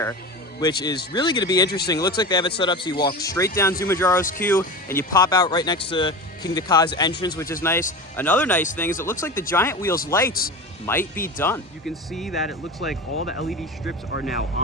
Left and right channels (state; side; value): normal; both; correlation 0.29